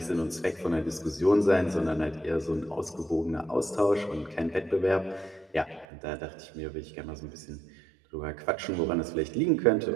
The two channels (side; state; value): left; drops out; at 5.9 s